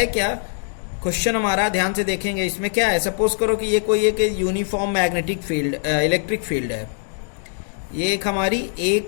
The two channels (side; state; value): right; silent; digital silence